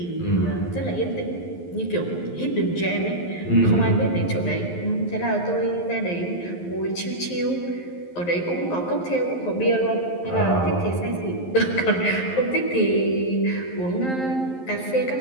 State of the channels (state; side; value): late; right; 11 ms